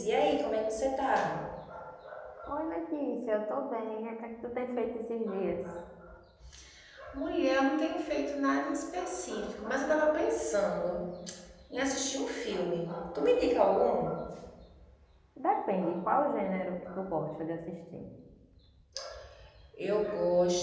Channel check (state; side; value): identical; both; correlation 1.00